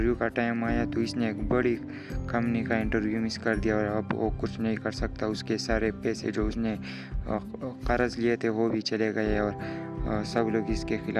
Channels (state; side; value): identical; both; correlation 1.00